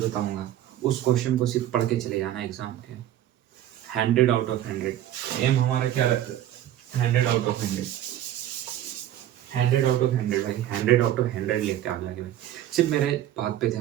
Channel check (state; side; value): quieter; left; 12.4 dB